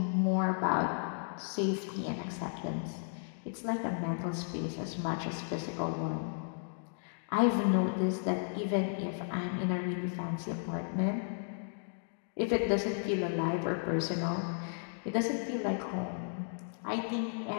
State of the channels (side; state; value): right; silent; digital silence